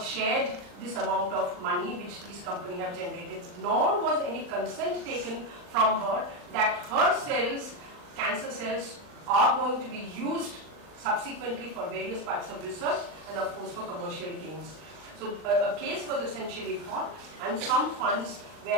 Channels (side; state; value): left; late; 40 ms